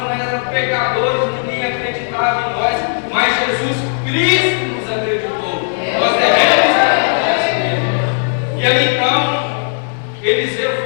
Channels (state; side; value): silent; right; digital silence